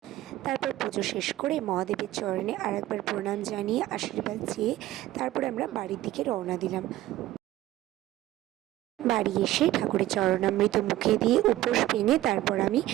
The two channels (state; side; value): quieter; left; 15.2 dB